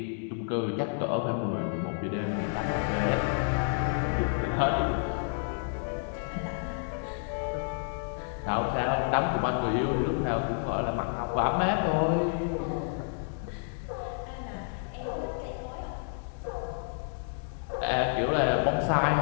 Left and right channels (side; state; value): right; silent; digital silence